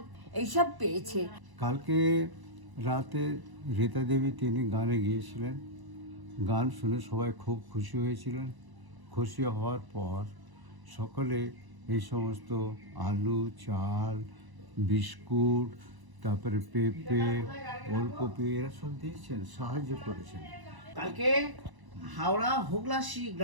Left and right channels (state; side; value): late; left; 1.0 ms